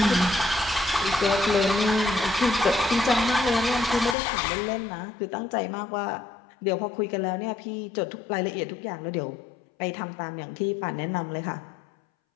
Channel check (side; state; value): right; drops out; at 4.2 s